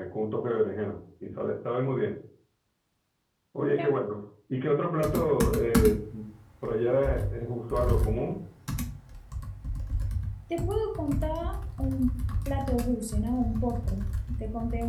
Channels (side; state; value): both; identical; correlation 1.00